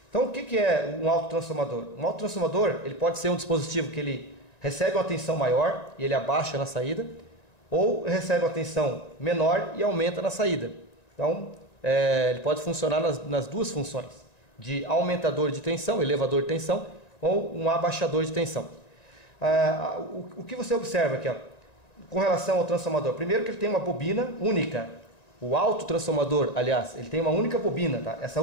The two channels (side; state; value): right; late; 1.9 ms